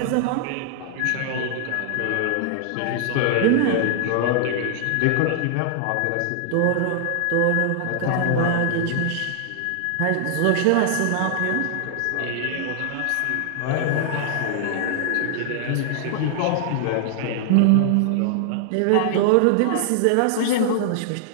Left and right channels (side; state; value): both; different; correlation 0.00